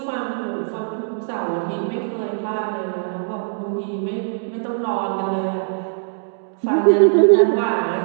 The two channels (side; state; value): left; silent; digital silence